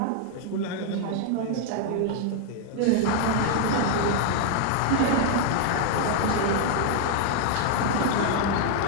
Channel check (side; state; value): both; different; correlation 0.00